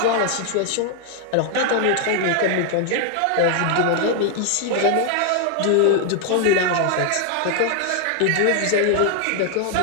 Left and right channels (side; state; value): both; different; correlation 0.00